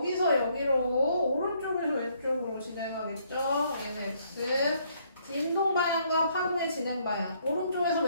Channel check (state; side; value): inverted; both; correlation -0.68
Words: 여기로 오른쪽에서 왼쪽으로 진행하겠죠. 얘는 X. 진동 방향과 파동의 진행 방향. 오른쪽에서